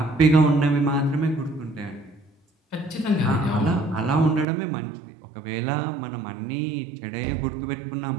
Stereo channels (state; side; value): drops out; left; at 4.5 s